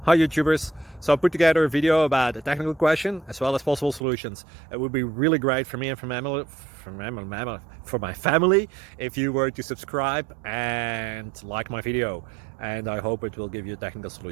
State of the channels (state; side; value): drops out; left; at 4.0 s